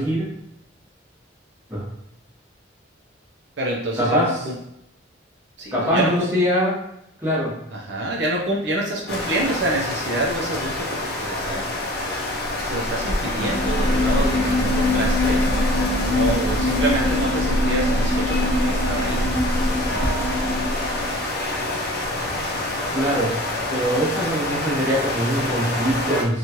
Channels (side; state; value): both; normal; correlation 0.41